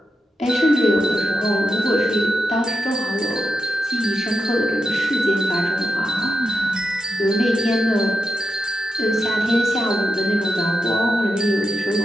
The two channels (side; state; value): both; normal; correlation 0.87